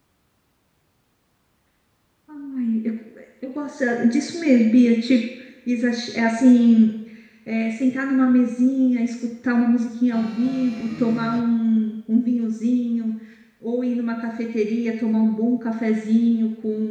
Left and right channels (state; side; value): identical; both; correlation 1.00